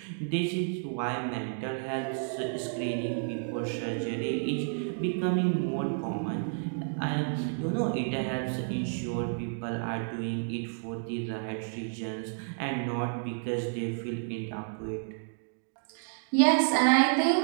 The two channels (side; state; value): left; silent; digital silence